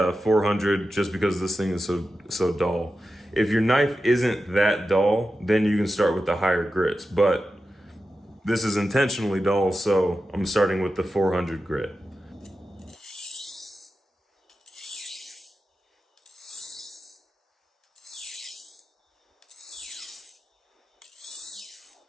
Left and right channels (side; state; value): both; normal; correlation 0.91